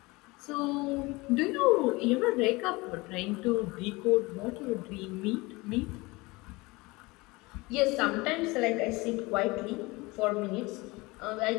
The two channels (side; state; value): right; quieter; 23.4 dB